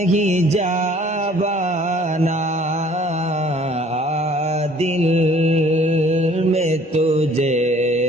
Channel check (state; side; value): normal; both; correlation 0.55